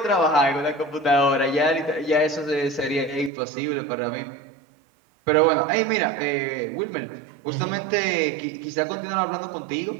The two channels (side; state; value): left; drops out; at 3.3 s